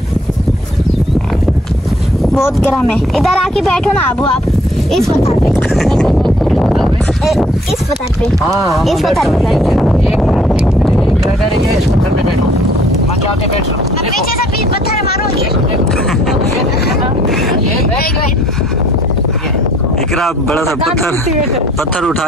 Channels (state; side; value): normal; both; correlation 0.61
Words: बहुत गर्म है। इधर आके बैठो ना अबू आप इस पत्थर पे, इस पत्थर पे, इस पत्थर पे इस पत्थर पे बैठो। मैं जाके बैठ रहा हूँ। पीछे से पत्थर मारूंगी। इकरा बड़ा सा पत्थर उठा